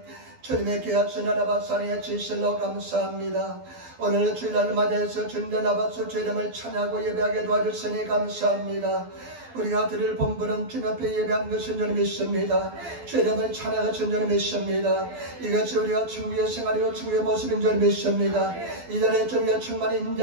주님의 귀하신 하나님 사랑의 진실로 감사합니다. 오늘 주일날을 맞이해서 주님의 나바수 주 이름을 찬양하고 예배하게 도와주시니 감사합니다. 우리가 드릴 본분은 주님 앞에 예배한 것인 줄 믿습니다. 주 이름을 찬양하신 줄 믿습니다. 이것이 우리가 천국의 생활이고 천국의 모습인 줄 믿습니다. 이 자리에 주님의 충만히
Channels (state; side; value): late; left; 12 ms